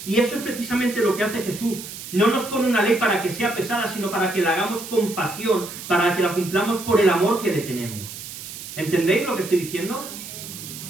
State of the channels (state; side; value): noise; right; hiss, 11 dB below the sound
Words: Y eso es precisamente lo que hace Jesús. No nos pone una ley para que sea pesada, sino para que la hagamos con pasión, para que la cumplamos por el amor que le tenemos. ¿Entendéis lo que estoy diciendo?